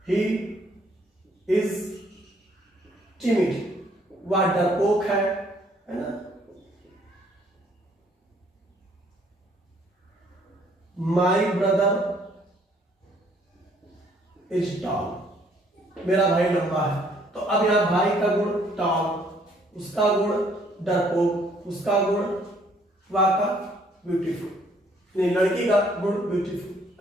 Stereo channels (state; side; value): normal; both; correlation 0.64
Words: ही इज टिमिड, वह डरपोक है ना। माई ब्रदर इज टॉल, मेरा भाई लंबा है। तो अब यहां भाई का गुण टॉल, उसका गुण डरपोक, उसका गुण वह का ब्यूटीफुल, नहीं लड़की का गुण